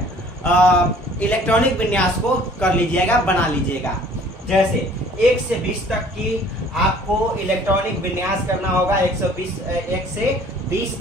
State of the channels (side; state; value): both; normal; correlation 0.53